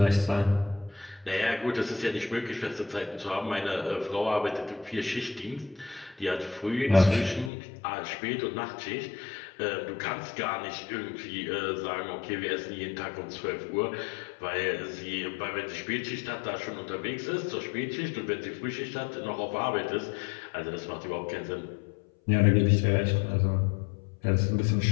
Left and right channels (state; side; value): drops out; right; at 7.5 s